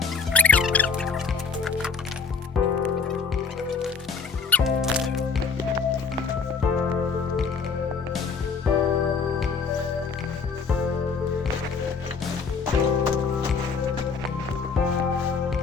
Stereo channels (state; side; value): quieter; right; 5.2 dB